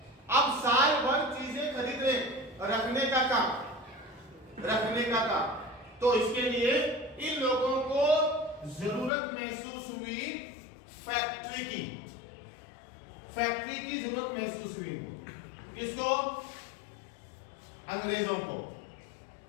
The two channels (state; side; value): drops out; right; at 9.1 s